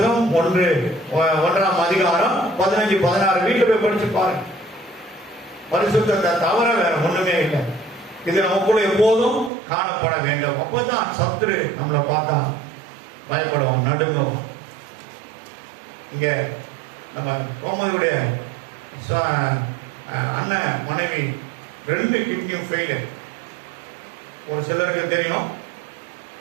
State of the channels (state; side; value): drops out; left; at 9.5 s